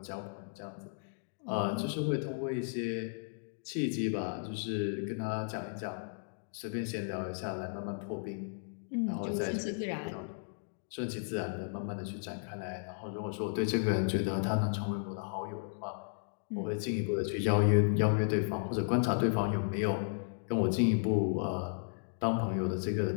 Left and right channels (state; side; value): silent; right; digital silence